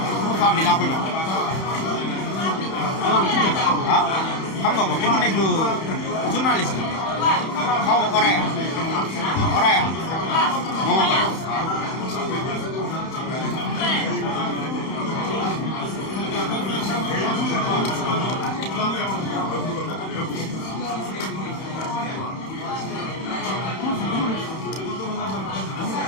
femme bi laa ko jox ah xam nga ko te mu nekk journaliste xaw ma Oraya moo ko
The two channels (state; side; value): late; right; 31 ms